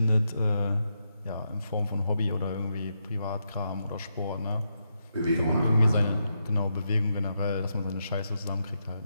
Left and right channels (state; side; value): inverted; both; correlation -0.83